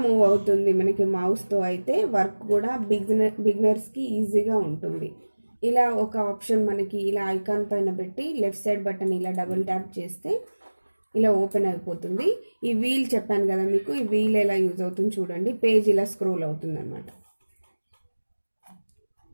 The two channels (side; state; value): both; inverted; correlation -1.00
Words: మూవ్ అవుతుంది మనకి మౌస్తో. అయితే వర్క్ కూడా బిగినర్స్కి ఈజీగా ఉంటుంది. ఇలా ఒక ఆప్షన్ మనకి ఇలా ఐకాన్ పైన పెట్టి లెఫ్ట్ సైడ్ బటన్ ఇలా డబుల్ ట్యాప్ చేస్తే ఇలా ఓపెన్ అయిపోతుంది. ఈ వీల్ చెప్పాను కదా మీకు, ఈ వీల్ ఎలా యూజ్ అవుతుంది చూడండి. పేజ్ ఇలా స్క్రోల్ అవుతుంది అన్నమాట.